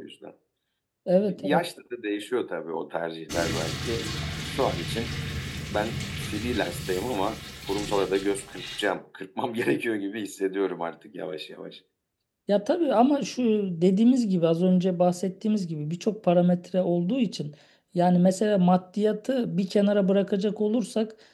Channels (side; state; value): both; identical; correlation 1.00